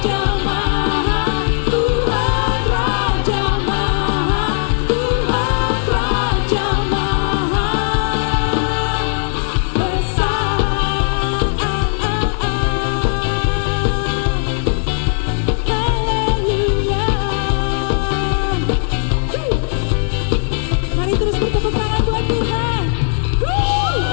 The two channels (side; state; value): right; silent; digital silence